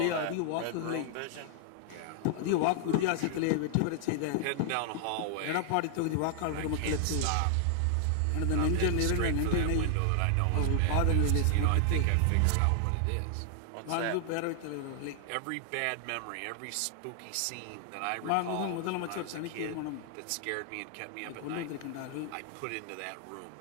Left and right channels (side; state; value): both; different; correlation 0.00